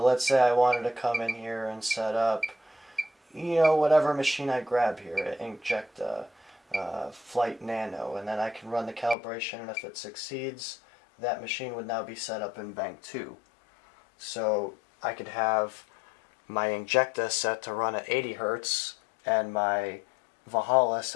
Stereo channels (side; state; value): right; drops out; at 9.2 s